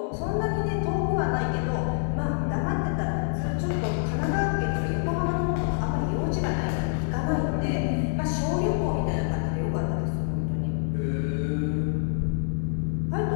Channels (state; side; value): silent; right; digital silence